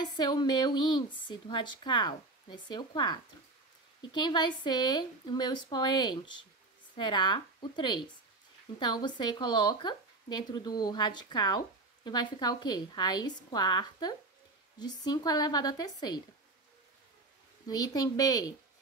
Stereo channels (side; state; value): left; quieter; 3.1 dB